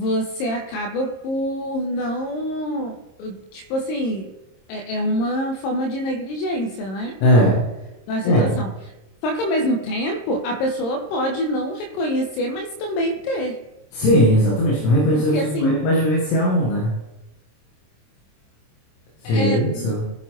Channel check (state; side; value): late; right; 26 ms